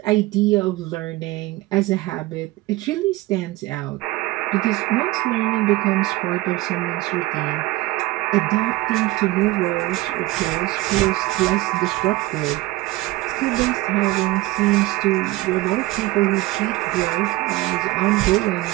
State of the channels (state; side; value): quieter; left; 19.0 dB